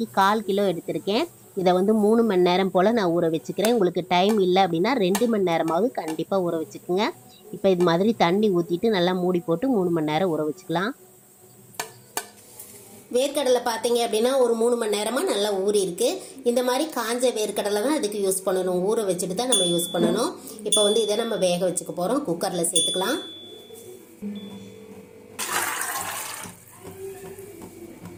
1/4 கிலோ எடுத்திருக்கேன். இதை 3 மணி நேரம் போல் நான் ஊற வச்சுக்கிறேன். உங்களுக்கு டைம் இல்லை அப்படின்னா 2 மணி நேரமாவது கண்டிப்பாக ஊற வச்சுக்கோங்க. இப்போ இது மாதிரி தண்ணி ஊற்றிட்டு நல்லா மூடி போட்டு 3 மணி நேரம் ஊற வச்சுக்கலாம். வேர்க்கடலை பார்த்தீங்க அப்படின்னா ஒரு 3 மணி நேரமாக நல்லா ஊறி இருக்கு. இந்த மாதிரி காஞ்ச வேர்க்கடலை தான் அதுக்கு யூஸ் பண்ணணும். ஊற வச்சுட்டு தான் நம்ம யூஸ் பண்ணணும். இப்போ இதை நம்ம வேக வச்சுக்க போகிறோம். குக்கரில் சேர்த்துக்கலாம்.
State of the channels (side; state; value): both; identical; correlation 1.00